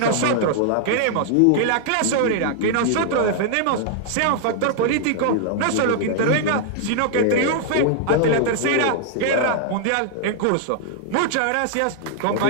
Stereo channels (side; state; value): both; different; correlation -0.01